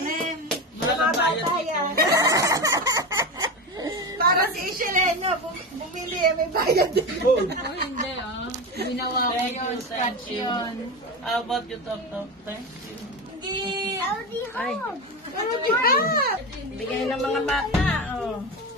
Mga bata yan. Para si Isheleno, bumili, may bayad din. Oh, hindi Ginawa ko yun, scratch yun. How about you, Tok? Thank you. Ay. Pero di ba? Bigay ng mga bata, oh.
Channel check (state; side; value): normal; both; correlation 0.21